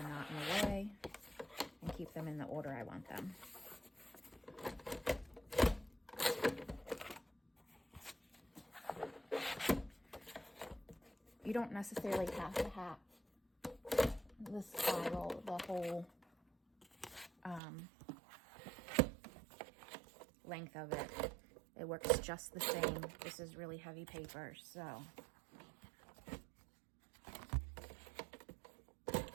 not in the way, and keep them in the order I want them. You don't necessarily have to have the spiral, the whole length of it. It works just the same. This is really heavy paper, so. So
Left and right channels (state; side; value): drops out; left; at 17.6 s